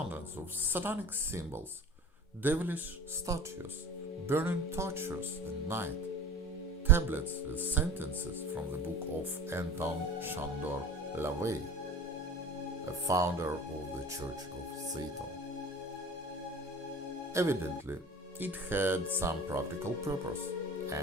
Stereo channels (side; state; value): both; normal; correlation 0.38